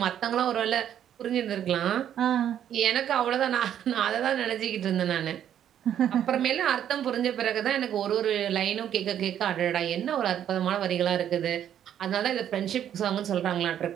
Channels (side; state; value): left; quieter; 10.1 dB